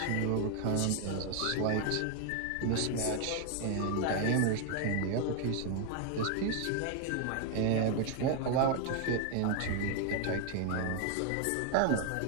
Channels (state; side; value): different; both; correlation 0.01